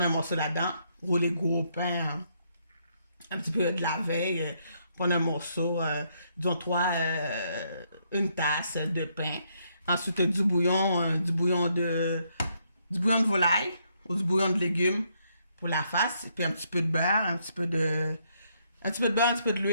un morceau là-dedans, rouler gros pain, un petit peu de la veille, prendre un morceau, disons une tasse de pain. Ensuite, du bouillon de volaille ou du bouillon de légumes pour la face, puis un petit peu de beurre, un petit peu de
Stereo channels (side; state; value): both; inverted; correlation -0.73